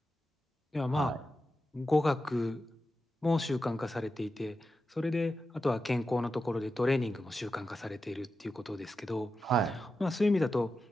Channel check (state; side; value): normal; both; correlation 0.90